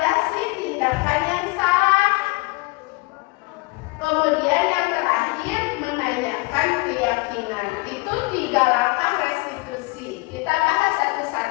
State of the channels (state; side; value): quieter; right; 25.0 dB